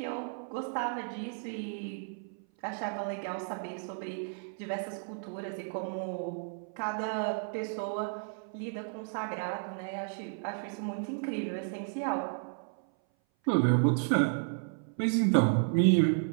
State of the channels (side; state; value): left; silent; 56 dB below the other